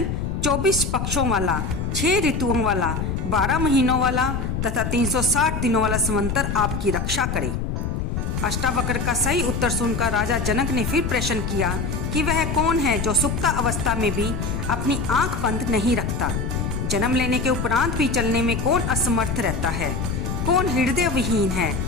24 पक्षों वाला, 6 ऋतुओं वाला, 12 महीनों वाला तथा 360 दिनों वाला संवंतर आपकी रक्षा करे। अष्टावक्र का सही उत्तर सुनकर राजा जनक ने फिर प्रश्न किया कि वह कौन है जो सुप्ता अवस्था में भी अपनी आंख बंद नहीं रखता। जन्म लेने के उपरांत भी चलने में कौन असमर्थ रहता है, कौन हृदय विहीन है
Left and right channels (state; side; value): noise; left; rumble, 2 dB below the sound